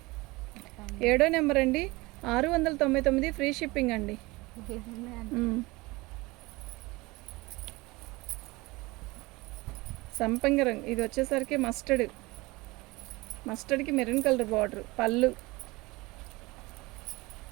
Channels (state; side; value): quieter; left; 22.6 dB